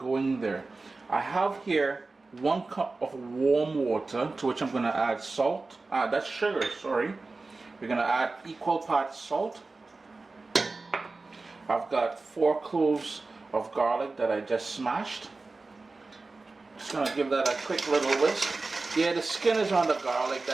there. I have here 1 cup of warm water, to which I'm going to add salt. That's sugar, sorry. We're going to add equal parts salt. I've got 4 cloves of garlic that I just smashed. Just going to give that a quick little whisk. Yeah, the skin is on the garlic,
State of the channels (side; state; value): left; quieter; 3.6 dB